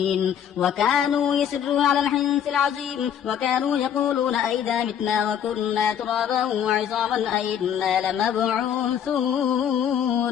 وكانوا يسرون على الحنث العظيم وكانوا يقولون أئذا متنا وكنا ترابا وعظاما أئنا لمبعوثون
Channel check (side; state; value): right; quieter; 9.0 dB